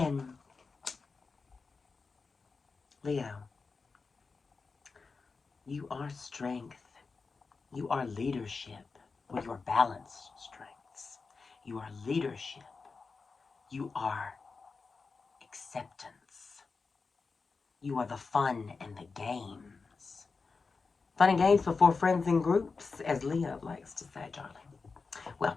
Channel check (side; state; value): right; quieter; 4.5 dB